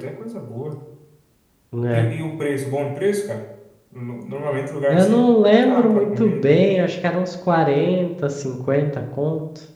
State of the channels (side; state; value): both; identical; correlation 1.00